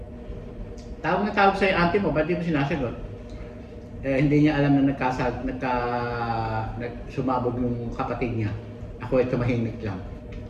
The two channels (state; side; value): identical; both; correlation 1.00